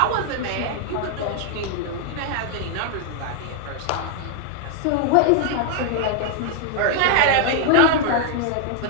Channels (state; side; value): different; both; correlation 0.00